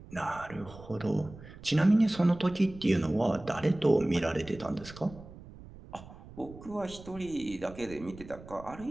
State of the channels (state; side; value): noise; right; rumble, 17 dB below the sound